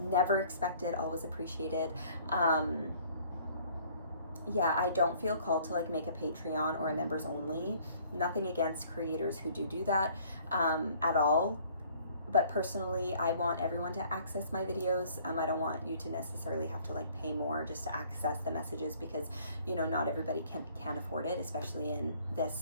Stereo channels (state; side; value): inverted; both; correlation -0.57